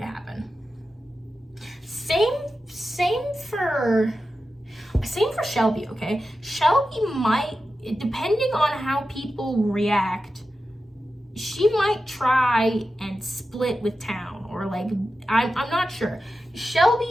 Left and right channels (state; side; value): normal; both; correlation 0.92